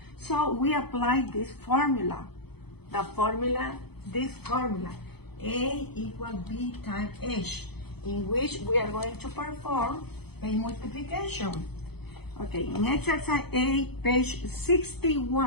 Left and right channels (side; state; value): right; late; 0.98 ms